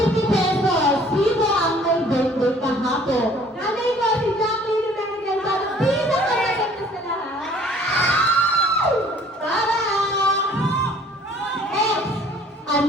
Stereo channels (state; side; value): normal; both; correlation 0.55